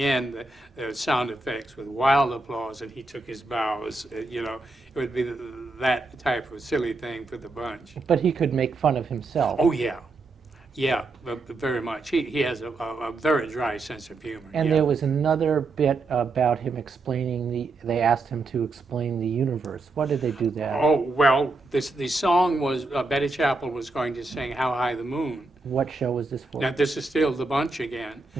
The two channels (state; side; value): quieter; left; 3.4 dB